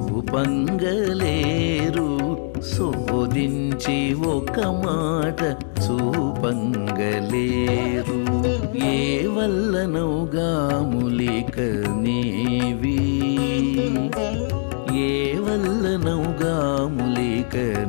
శోధించి ఒక మాట చూపంగలేరు ఏ వల్లనౌగా ములిక నీవి ఏ వల్లనౌగా ములిక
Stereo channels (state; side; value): silent; right; 64 dB below the other